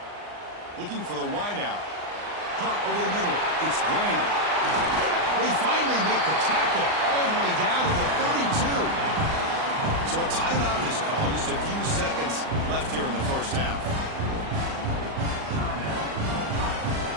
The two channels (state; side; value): late; left; 39 ms